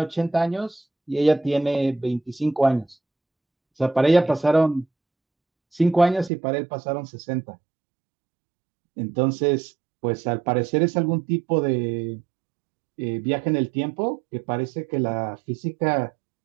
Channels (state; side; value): drops out; left; at 6.3 s